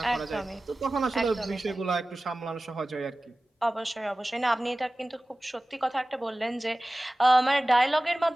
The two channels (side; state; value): both; normal; correlation 0.97